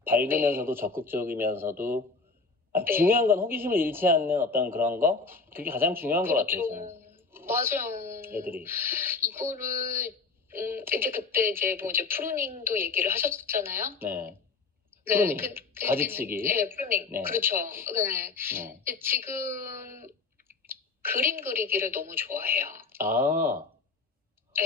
밝으면서도 적극적이면서도 중요한 건 호기심을 잃지 않는 어떤 그런 거? 그게 가장 중요한 것 같아요. 저는. 맞아요. 애들이. 이거를 이제 그때 이제 프루닝도 얘기를 하셨잖아요. 네. 네, 프루닝. 가지치기. 네, 프루닝. 네. 그렇죠. 네. 근데 지금 그림 그리기를 너무 좋아해요. 아,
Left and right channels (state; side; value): quieter; right; 4.2 dB